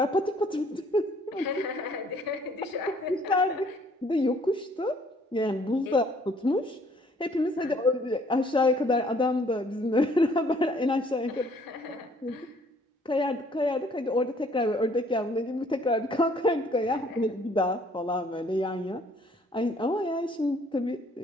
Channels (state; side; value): normal; both; correlation 0.61